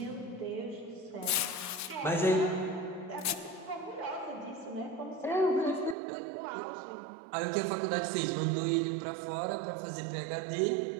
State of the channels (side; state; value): left; drops out; at 6.0 s